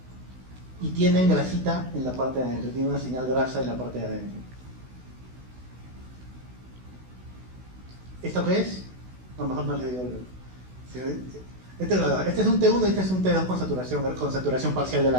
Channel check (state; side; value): late; left; 16 ms